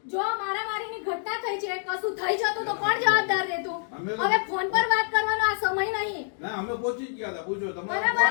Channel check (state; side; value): silent; right; 60 dB below the other